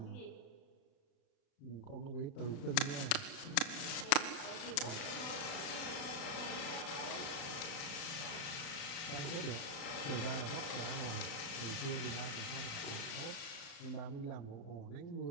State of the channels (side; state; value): right; late; 36 ms